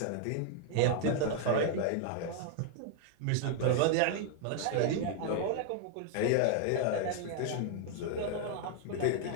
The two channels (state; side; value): different; both; correlation 0.00